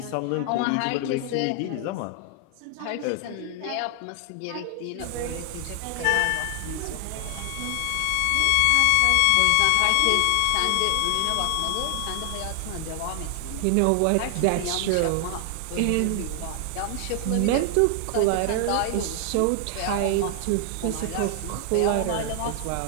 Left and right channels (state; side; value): different; both; correlation 0.00